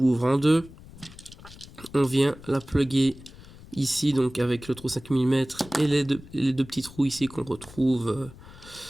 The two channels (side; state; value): left; noise; rumble, 19 dB below the sound